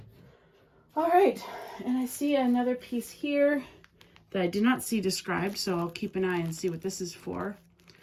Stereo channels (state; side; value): identical; both; correlation 1.00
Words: All right, and I see another piece here that I did not see described, so I'll keep an eye and see what this is for.